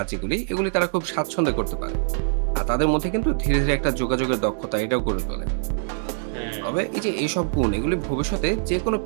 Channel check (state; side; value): silent; left; digital silence